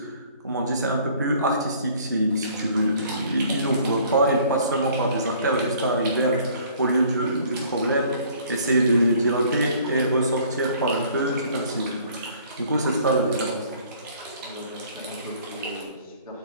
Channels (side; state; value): both; inverted; correlation -0.56